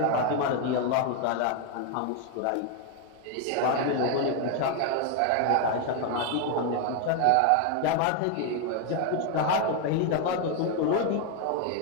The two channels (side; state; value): both; different; correlation 0.01